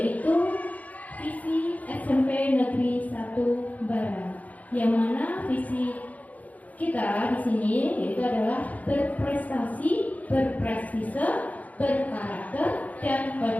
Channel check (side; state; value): right; late; 0.074 ms